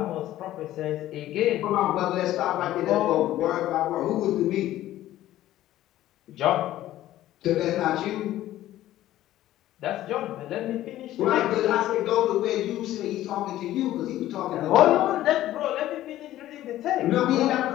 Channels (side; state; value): right; quieter; 14.1 dB